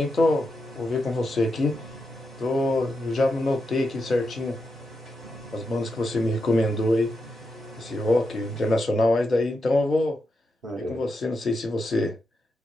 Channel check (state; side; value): normal; both; correlation 0.86